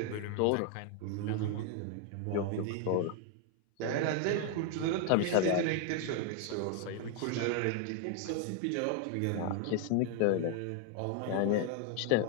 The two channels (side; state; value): both; different; correlation 0.00